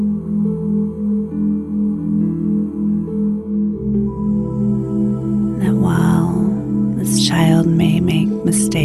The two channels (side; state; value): both; identical; correlation 1.00